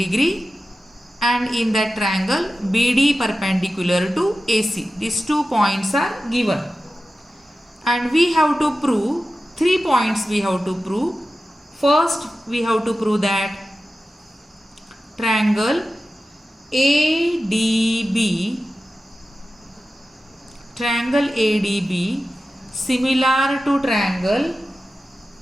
and in that triangle BD perpendicular to AC. These 2 points are given. And we have to prove 3 points we have to prove. First, we have to prove that triangle ADB similar to triangle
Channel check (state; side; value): normal; both; correlation 0.94